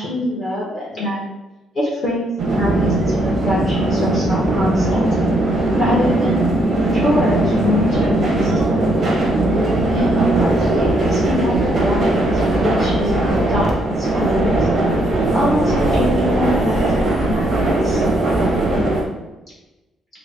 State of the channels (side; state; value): both; normal; correlation 0.73